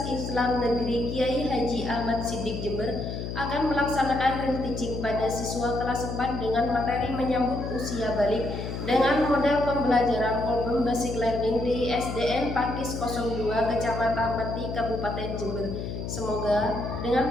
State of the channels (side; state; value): left; noise; hum, 5 dB below the sound